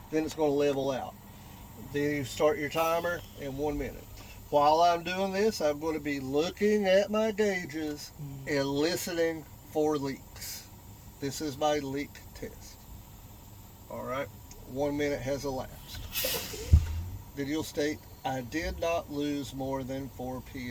then it's going to level out. Then you start your timer in 1 minute. While I'm doing this, I'm going to be looking at my gauges and listening for leaks. This is my leak test. Alright, 1 minute has elapsed. Video state, I did not lose more than 4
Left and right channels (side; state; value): both; identical; correlation 1.00